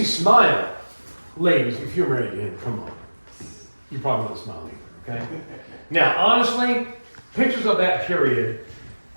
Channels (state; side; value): inverted; both; correlation -1.00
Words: smile? Ladies, if you're married to him, come on. You probably don't smile either, okay? Now, honestly, pictures of that period,